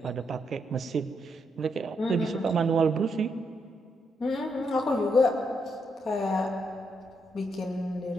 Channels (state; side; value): normal; both; correlation 0.79